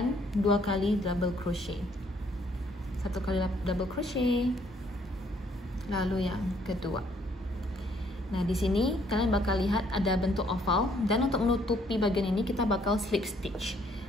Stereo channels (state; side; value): normal; both; correlation 0.66